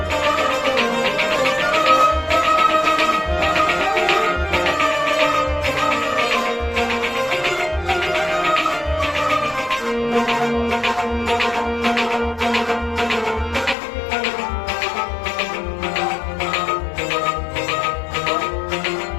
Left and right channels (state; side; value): drops out; right; at 13.8 s